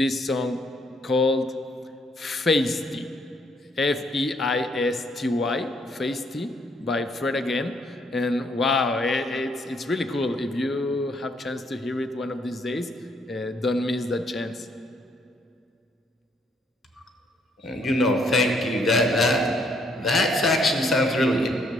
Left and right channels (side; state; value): both; normal; correlation 0.69